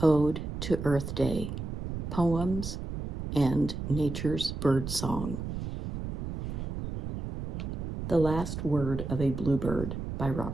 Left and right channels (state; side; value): noise; right; rumble, 5 dB below the sound